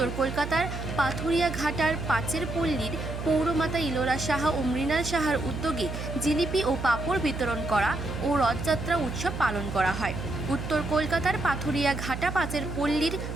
কলকাতার পাথুরিয়া ঘাটার পাঁচের পল্লীর পৌরমাতা ইলোরা সাহা ও মৃণাল সাহার উদ্যোগে জিলিপি ও পাঁপড় বিতরণ করা ও রথযাত্রা উৎসব পালন করা হয়। উত্তর কলকাতার পাথুরিয়া ঘাটা পাঁচের পল্লীর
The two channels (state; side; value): noise; right; hum, 6 dB below the sound